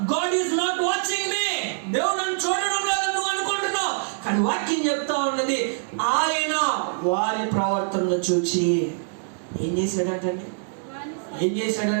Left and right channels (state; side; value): silent; left; digital silence